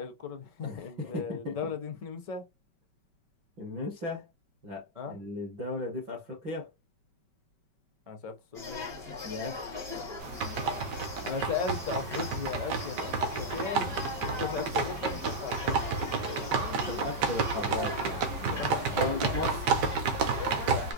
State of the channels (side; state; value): left; late; 5.2 ms